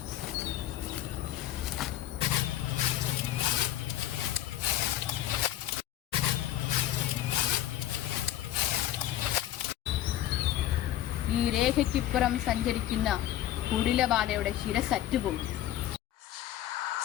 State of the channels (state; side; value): quieter; right; 12.9 dB